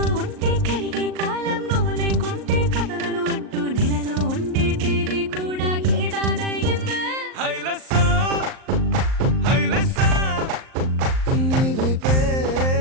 ఉంటే కరిగే కాలం, నువ్వు లేకుంటే కథలను అంటూ నెలలో ఉండే తేదీ కూడా ఏడాదయ్యిందే. హైలెస్సా హైలెస్సా నీ వైపే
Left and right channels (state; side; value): late; left; 38 ms